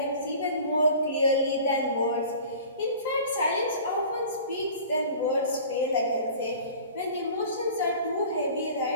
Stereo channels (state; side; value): inverted; both; correlation -0.43